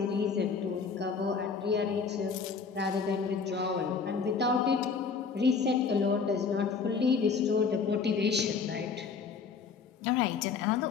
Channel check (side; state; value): right; quieter; 5.5 dB